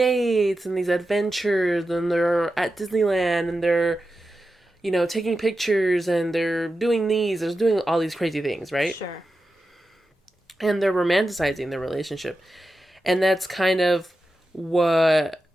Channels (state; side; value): normal; both; correlation 0.91